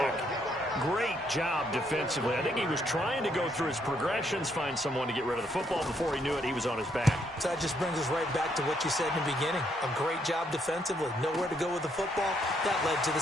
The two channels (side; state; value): both; normal; correlation 0.73